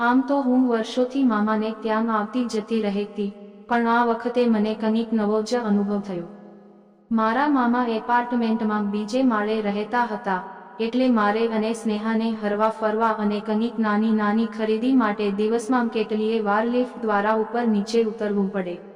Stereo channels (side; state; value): both; identical; correlation 1.00